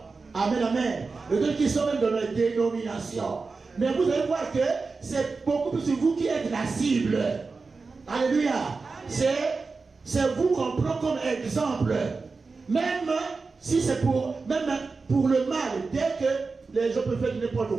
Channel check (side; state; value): left; quieter; 4.3 dB